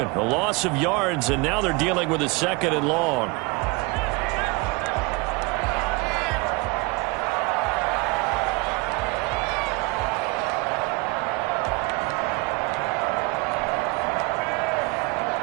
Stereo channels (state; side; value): quieter; left; 26.7 dB